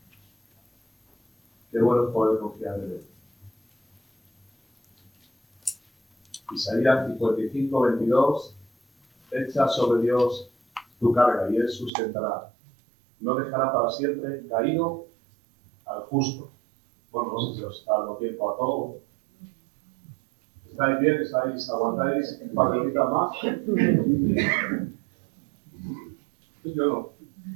Qué bueno es poder confiar en Él. Isaías 55, 22, echa sobre Dios tu carga y Él sustentará. No dejará para siempre caído al justo. Bueno, no sé si os está dando tiempo a todo. ¿Estáis bien? ¿Aguantáis un par de horitas más? Yo no.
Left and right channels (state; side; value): drops out; left; at 11.9 s